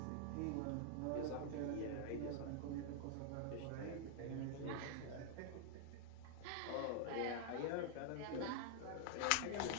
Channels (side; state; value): both; different; correlation 0.00